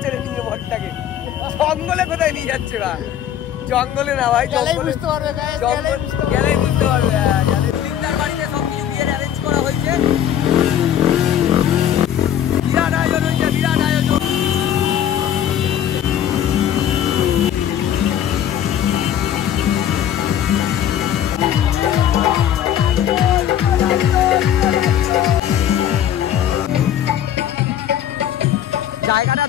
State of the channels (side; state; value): right; quieter; 10.1 dB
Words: রে নিয়ে বরটাকে? জঙ্গলে কোথায় নিয়ে যাচ্ছে ভাই? জঙ্গলে না ভাই, গেলেই বুঝতে পারবে। তিনটার বাড়িতে সব কিছু বিয়ের অ্যারেঞ্জ করা হয়েছে। বিরাট আয়োজন হয়েছে, বিরাট আয়োজন। জায়গাটা